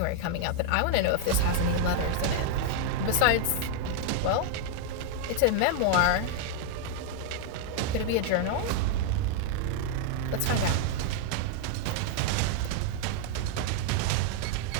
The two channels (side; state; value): both; different; correlation -0.01